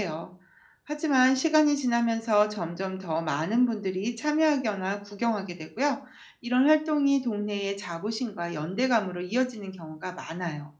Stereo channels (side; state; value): both; identical; correlation 1.00